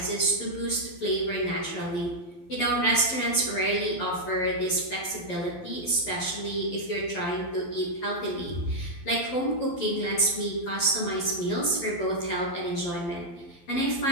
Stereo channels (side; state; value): right; late; 12 ms